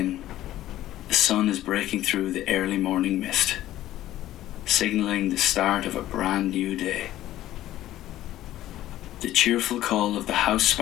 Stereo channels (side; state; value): right; quieter; 14.0 dB